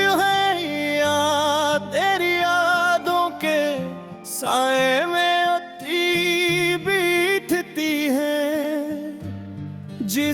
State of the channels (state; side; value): identical; both; correlation 1.00